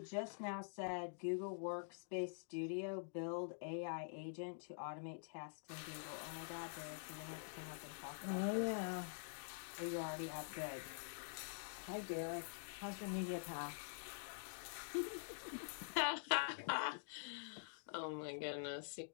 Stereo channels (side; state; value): right; silent; digital silence